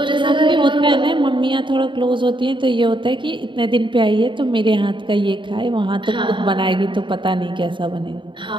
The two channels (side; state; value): left; late; 0.23 ms